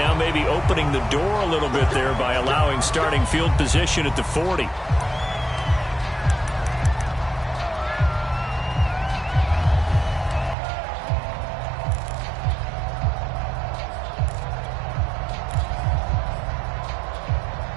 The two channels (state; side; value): drops out; left; at 10.6 s